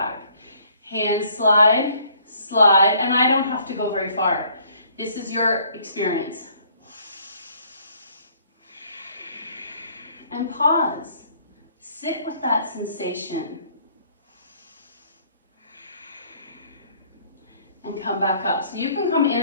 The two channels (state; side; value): inverted; both; correlation -0.61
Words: Hands slide, slide, and I don't have to go very far. This is your experience. And pause. Sit with that sensation. And come back up. So you can come in